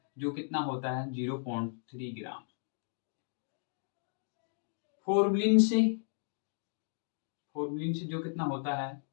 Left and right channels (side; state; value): right; silent; digital silence